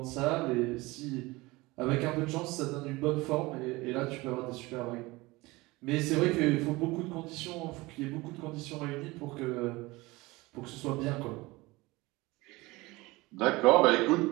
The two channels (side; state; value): left; quieter; 21.8 dB